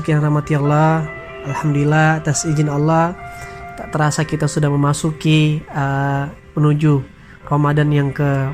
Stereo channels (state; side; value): identical; both; correlation 1.00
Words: yang rahmati Allah, alhamdulillah atas izin Allah tak terasa kita sudah memasuki menuju Ramadan yang